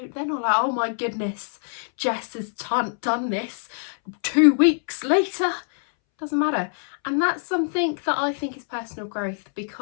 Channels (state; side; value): silent; right; 62 dB below the other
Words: like, oh my goodness, Jess has done this 2 weeks later. Doesn't matter. And that's something that I think is personal growth,